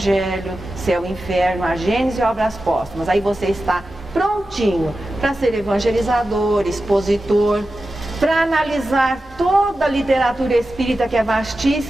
Céu e Inferno, a Gênese e Obras Póstumas. Aí você está prontinho para ser evangelizador, expositor, para analisar toda a literatura espírita, que é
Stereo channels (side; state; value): both; normal; correlation 0.93